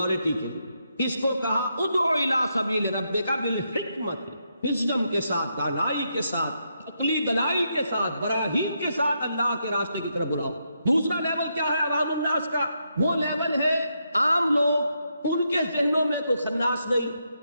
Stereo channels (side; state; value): both; inverted; correlation -0.81